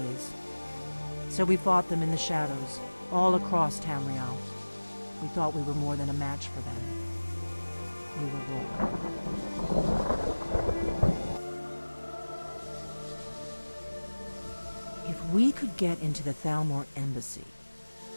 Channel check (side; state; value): both; inverted; correlation -1.00